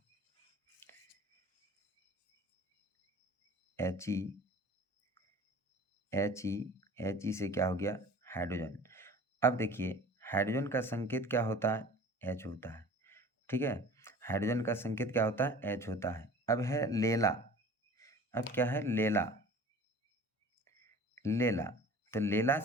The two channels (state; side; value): normal; both; correlation 0.43